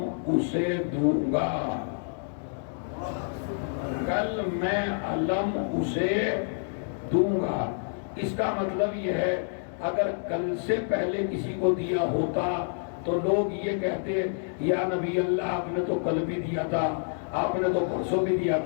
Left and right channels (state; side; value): silent; right; digital silence